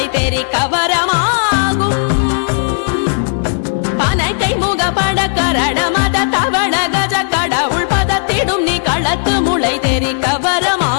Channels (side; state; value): right; silent; digital silence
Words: தெரி கவரமாகும் பனைக்கை முக பட கரட மத தவள கஜ கடவுள் பதத்திடும் நீ களத்து முளை தெரி